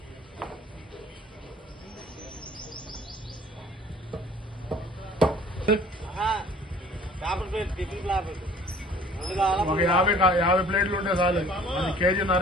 ఒక 50 ప్లేట్లు ఉంటే చాలు. అది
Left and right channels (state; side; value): normal; both; correlation 0.51